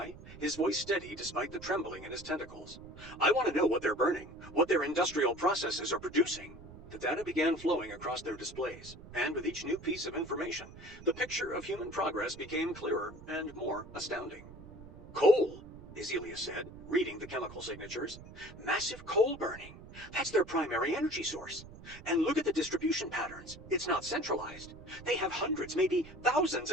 his voice steady despite the trembling in his tentacles. "I want to know what they're burning, what their industrial processes are producing." The data began flowing across their displays, and with each new piece of information, the picture of human progress became clearer and more astounding. "Coal," Izila said, reading the chemical signatures. "Massive coal burning. That's their primary energy source. And look at the distribution patterns. It's not centralized. They have hundreds, maybe thousands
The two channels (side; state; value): right; noise; rumble, 16 dB below the sound